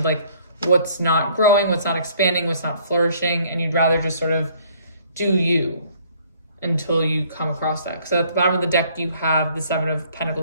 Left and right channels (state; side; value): inverted; both; correlation -0.59